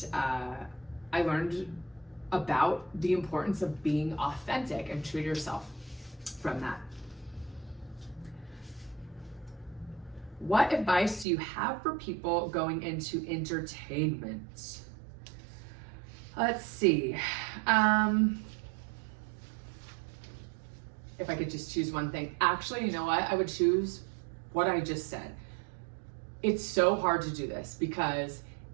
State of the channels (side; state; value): left; drops out; at 11.2 s